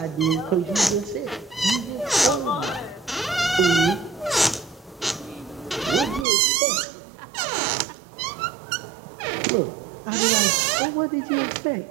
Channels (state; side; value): drops out; left; at 6.2 s